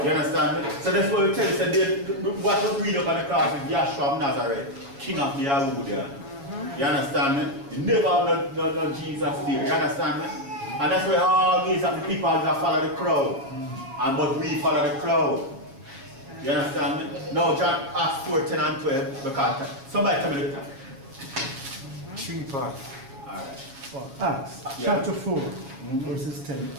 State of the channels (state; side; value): late; left; 7.3 ms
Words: You understand me? So that's what we tell you, so what was read up on the cross is Yahshua of Nazareth, King of the Yahudian. You understand me? You never have no Jesus there. You understand me? And that's why all these are the people that follow the crowd. And but we follow the crowd. You understand me? Now John Acts 4, 10 and 12, because somebody tell me the time. 3 parts. Alright. Acts chapter 4, verses 10